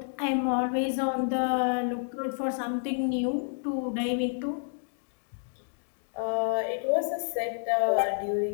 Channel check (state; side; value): silent; right; digital silence